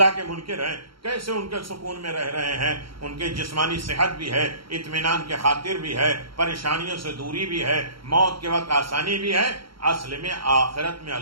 کے منکر ہیں، کیسے ان کے سکون میں رہ رہے ہیں، ان کے جسمانی صحت بھی ہے، اطمینان کے خاطر بھی ہے، پریشانیوں سے دوری بھی ہے، موت کے وقت آسانی بھی ہے۔ اصل میں آخرت میں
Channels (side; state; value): left; late; 0.74 ms